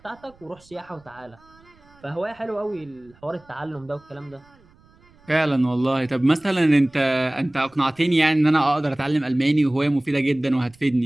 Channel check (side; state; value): right; noise; rumble, 29 dB below the sound